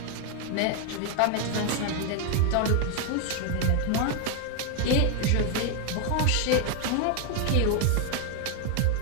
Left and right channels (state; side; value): different; both; correlation 0.01